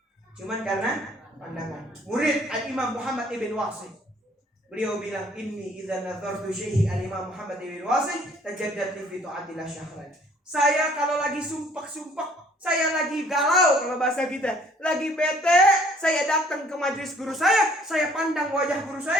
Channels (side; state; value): both; normal; correlation 0.59